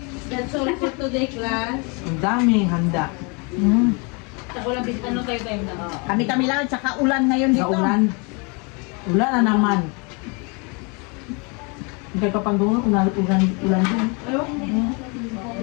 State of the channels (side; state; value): right; quieter; 32.0 dB